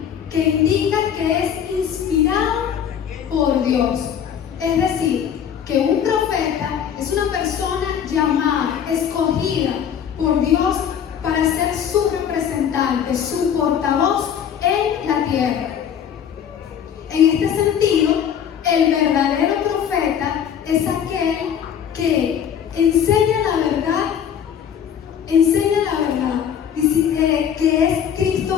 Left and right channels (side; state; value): right; quieter; 8.6 dB